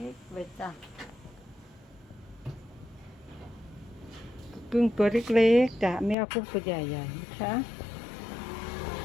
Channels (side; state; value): right; drops out; at 6.2 s